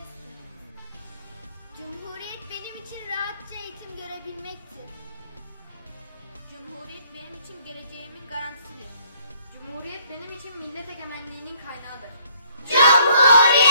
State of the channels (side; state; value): both; inverted; correlation -0.62